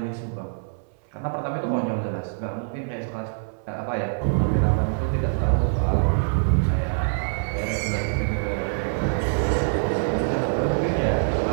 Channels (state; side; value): silent; left; 62 dB below the other